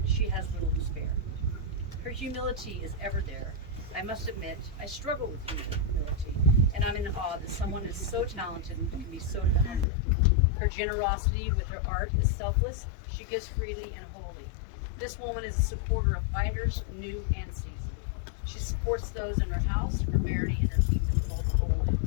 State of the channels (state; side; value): drops out; right; at 9.9 s